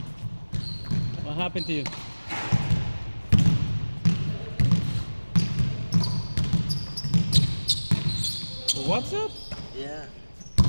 What happened to you? What's up? Yeah.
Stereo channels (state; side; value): inverted; both; correlation -1.00